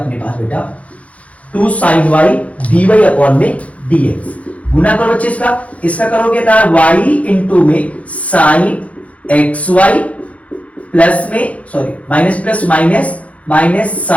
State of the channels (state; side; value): late; right; 0.065 ms